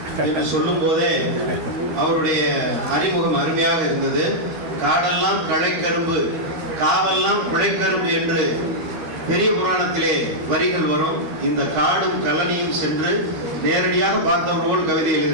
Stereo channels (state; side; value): late; left; 13 ms